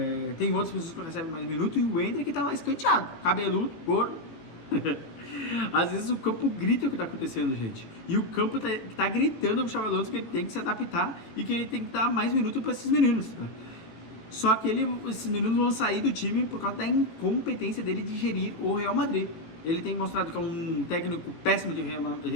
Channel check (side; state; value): right; late; 18 ms